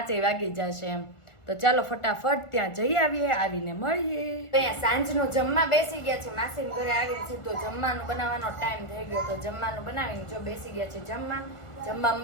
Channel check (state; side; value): late; right; 1.4 ms